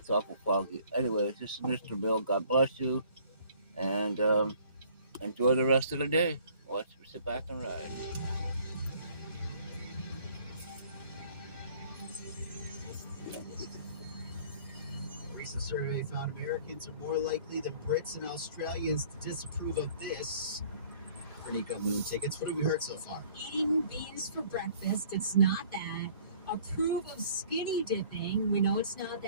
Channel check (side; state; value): both; inverted; correlation -0.55